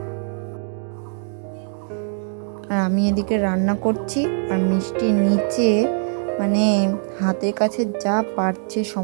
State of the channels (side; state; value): left; silent; 63 dB below the other